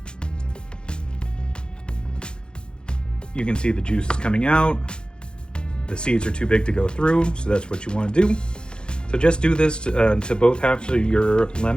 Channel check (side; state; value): right; late; 0.049 ms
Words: You can see the juice is coming out. The seeds are too big to go through, so that's what you want to do. So just do this to both halves of your